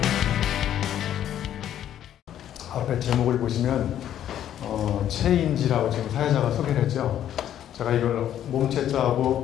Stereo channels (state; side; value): quieter; right; 10.9 dB